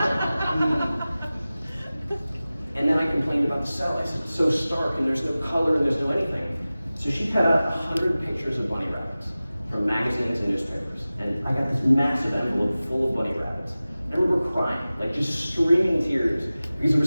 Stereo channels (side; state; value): both; inverted; correlation -0.97